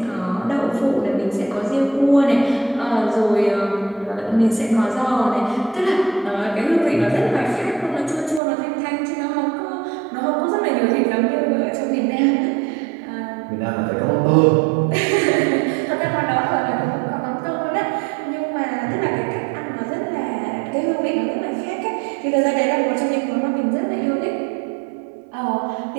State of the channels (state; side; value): drops out; left; at 8.4 s